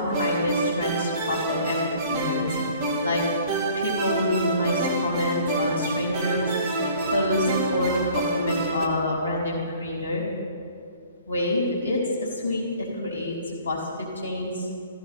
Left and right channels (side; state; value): both; inverted; correlation -0.53